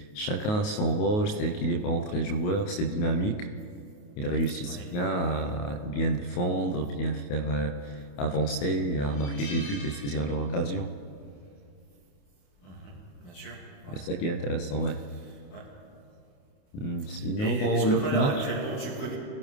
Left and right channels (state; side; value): late; right; 28 ms